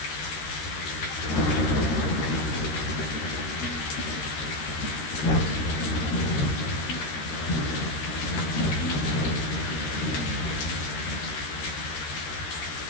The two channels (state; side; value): late; right; 13 ms